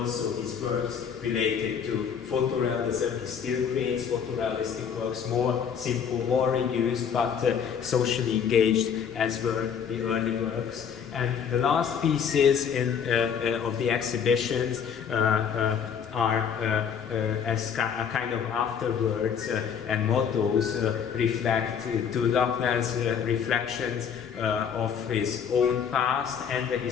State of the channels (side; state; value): right; quieter; 7.4 dB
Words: his works related to photorealism. He still creates photorealistic works, more simple, more reduced, but socially engaged, as were the early works. And the last pieces of the exhibitions are as a kind of afterwords and mottos reflect to Lakner's reflections of his own past and the